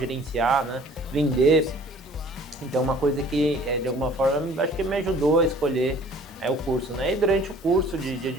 né? Vender. Então, uma coisa que, de alguma forma, acho que me ajudou a escolher o curso, né? E durante o curso de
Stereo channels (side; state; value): both; normal; correlation 0.51